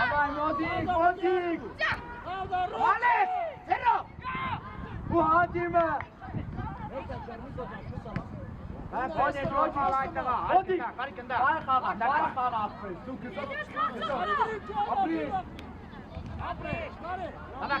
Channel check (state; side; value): identical; both; correlation 1.00